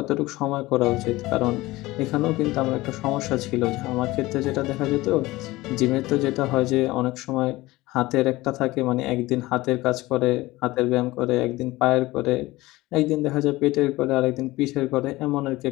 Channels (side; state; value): right; quieter; 19.3 dB